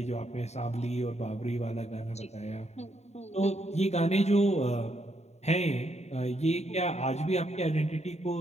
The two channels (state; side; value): late; right; 0.32 ms